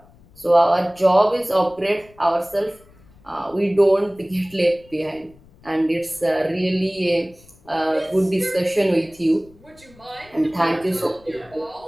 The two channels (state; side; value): noise; left; rumble, 27 dB below the sound